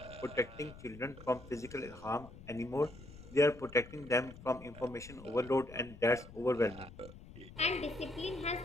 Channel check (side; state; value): left; noise; rumble, 17 dB below the sound